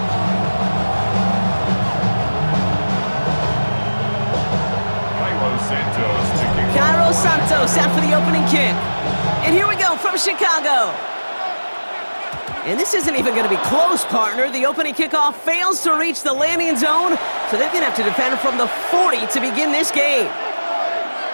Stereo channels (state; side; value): inverted; both; correlation -1.00